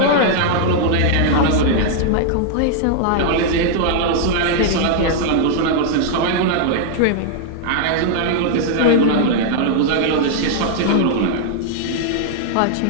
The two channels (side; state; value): both; different; correlation -0.01